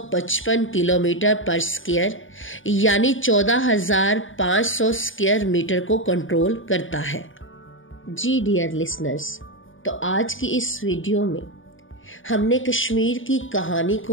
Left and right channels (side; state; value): right; late; 0.57 ms